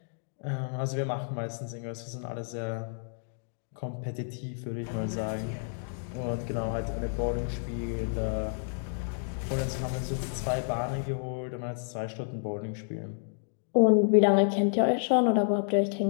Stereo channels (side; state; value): right; silent; digital silence